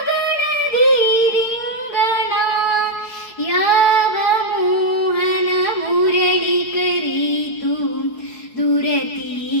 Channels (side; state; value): right; late; 4.7 ms